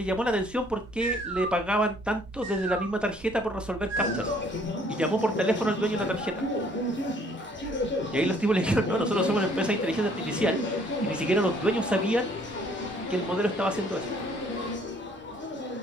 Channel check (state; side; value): normal; both; correlation 0.60